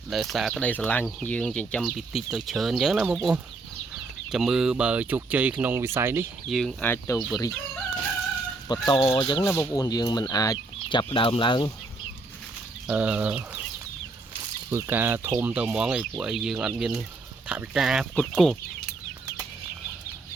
ដោយសារក្តីស្រឡាញ់យើងចិញ្ចឹមពីតិចទៅច្រើនអញ្ចឹងណាបងប្អូនចាំមើលបើជោគជ័យក្នុងវិស័យនេះយើងអាចទៅបរិយាបន្តអញ្ចឹងណាបងប្អូនយើងមិនអាចចាប់ដើមឡើងធ្វើការធំទៅហ្មងឯពួកអីយើងអត់មានថវិកាផ្គត់ផ្គង់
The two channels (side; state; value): left; quieter; 3.4 dB